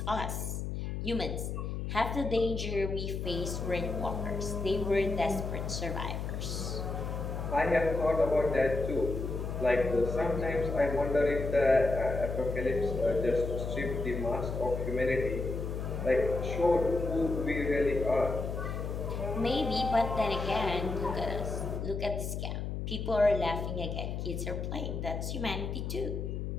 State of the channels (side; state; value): left; noise; hum, 4 dB below the sound